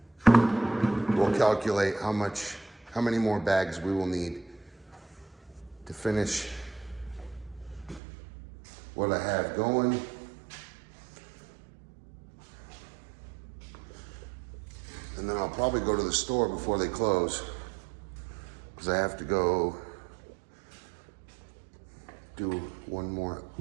we'll calculate how many more bags we will need to finish what I have going. And then I'll probably go to the store before they close, because I have to go do one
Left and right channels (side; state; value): left; drops out; at 8.0 s